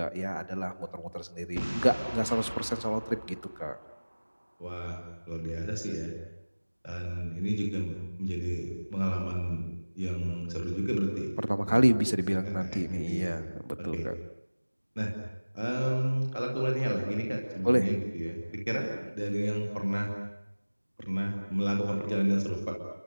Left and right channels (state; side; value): inverted; both; correlation -1.00